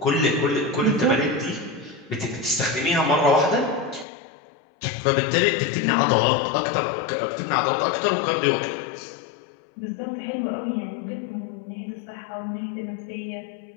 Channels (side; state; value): right; drops out; at 4.0 s